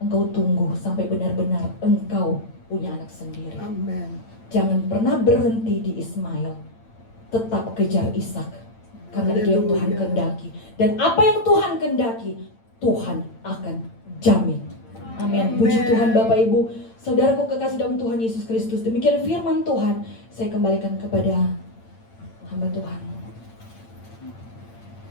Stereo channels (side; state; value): right; late; 8.9 ms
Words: tunggu sampai benar-benar engkau punya anak sendiri. Amen. Jangan pernah berhenti di Ismail. Tetap kejar Ishak. Karena itu yang Tuhan kehendaki. Dan apa yang Tuhan kehendaki, Tuhan akan jamin. Amin. Puji Tuhan Bapak Ibu. Saudaraku kekasih dalam Tuhan Yesus Kristus. Demikian firman Tuhan. Saya kembalikan kepada hamba Tuhan.